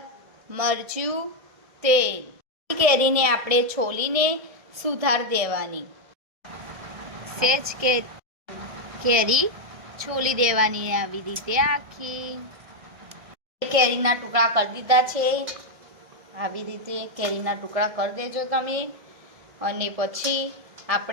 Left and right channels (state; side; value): late; left; 1.7 ms